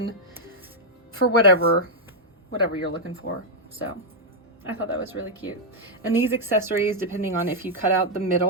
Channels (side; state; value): both; normal; correlation -0.03